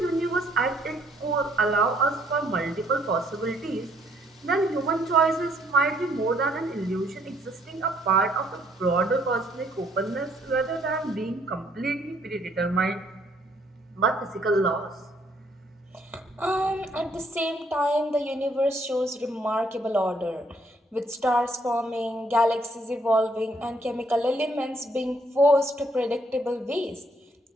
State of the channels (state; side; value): normal; both; correlation 0.67